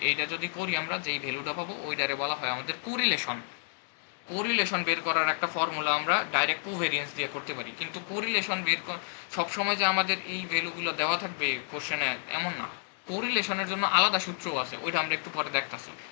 এইটা যদি করি আমরা, যেই ভ্যালুটা পাবো ওইটারে বলা হয় আমাদের কোরিলেশন। কোরিলেশন বের করার একটা ফর্মুলা আমরা ডাইরেক্ট কোভেরিয়েন্স দিয়ে করতে পারি, কিন্তু কোরিলেশন সবসময় যে আমাদের এই ভ্যালুগুলো দেওয়া থাকবে কোশ্চেনে এমন না। কোরিলেশনের জন্য আলাদা সূত্রও আছে, ওইটা আমরা একটু পরে দেখতাছি।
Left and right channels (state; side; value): silent; right; digital silence